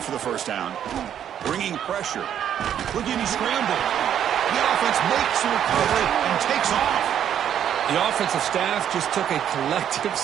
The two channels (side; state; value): left; quieter; 9.7 dB